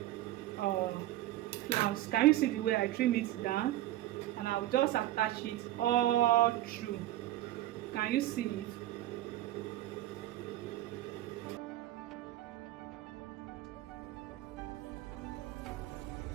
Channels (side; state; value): left; quieter; 14.7 dB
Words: flounce. Can you see the way I trim it down? And I'll just attach it all through. Can you see it?